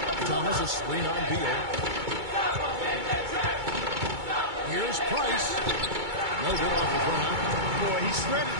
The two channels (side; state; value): left; late; 2.2 ms